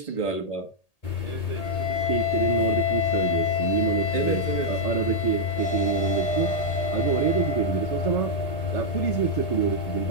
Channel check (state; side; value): late; right; 1.8 ms